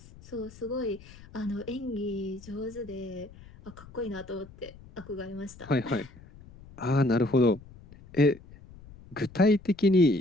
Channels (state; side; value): noise; left; rumble, 20 dB below the sound